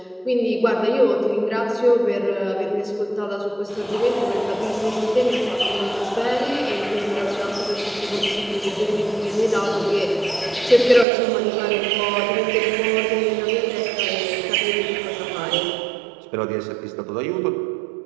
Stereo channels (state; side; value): drops out; left; at 11.1 s